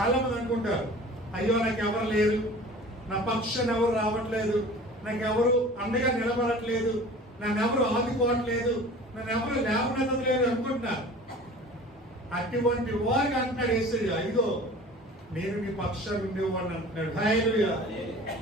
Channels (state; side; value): normal; both; correlation 0.42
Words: మంది అనుకుంటారు, అయ్యో నాకు ఎవరు లేరు, నా పక్షాన్ని ఎవరు రావట్లేదు, నాకు ఎవరు అండగా నిలబడట్లేదు, నన్ను ఎవరు ఆదుకోవట్లేదు, నన్ను ఎవరు లేవనెత్తలేదు అనుకుంటున్నారు. అటువంటి వారికి అంటున్నాడు యేసయ్య, ఇదిగో నేను నీ పక్షాన్ని ఉండేవాడిని అంటున్నాడు. హల్లెలూయా.